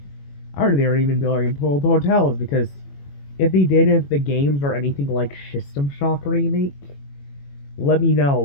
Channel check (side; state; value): right; late; 21 ms